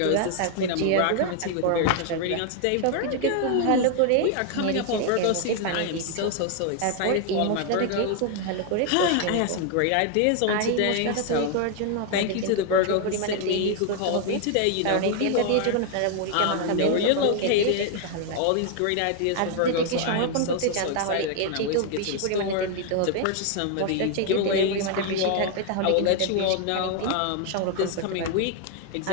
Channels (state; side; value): different; both; correlation 0.00